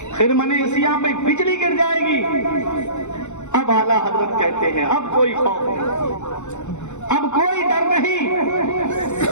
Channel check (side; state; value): right; late; 0.83 ms